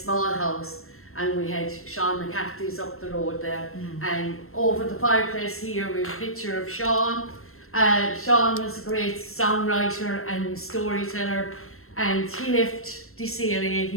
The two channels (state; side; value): late; right; 0.62 ms